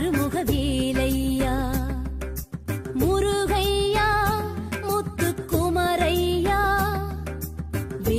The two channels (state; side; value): identical; both; correlation 1.00